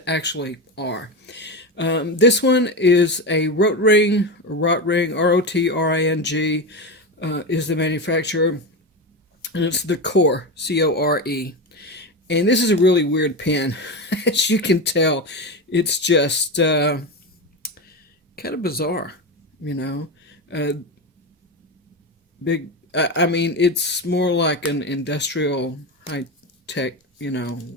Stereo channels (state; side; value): normal; both; correlation 0.18